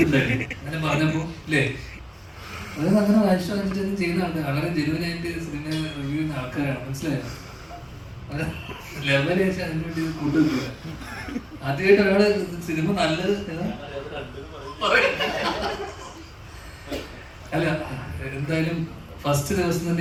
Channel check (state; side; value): identical; both; correlation 1.00